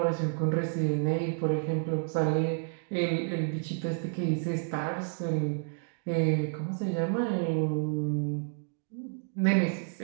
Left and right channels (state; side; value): silent; left; 58 dB below the other